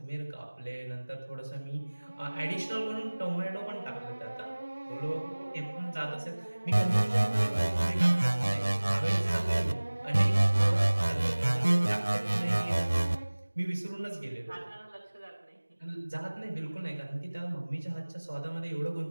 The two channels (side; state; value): both; inverted; correlation -1.00